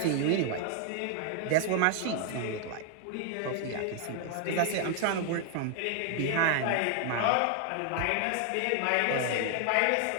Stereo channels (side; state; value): both; different; correlation 0.00